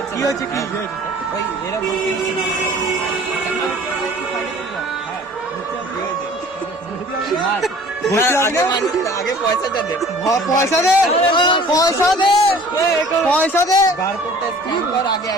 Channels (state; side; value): normal; both; correlation 0.48